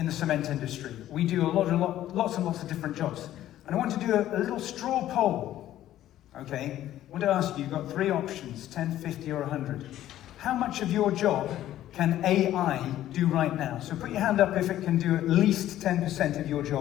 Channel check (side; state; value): right; quieter; 13.0 dB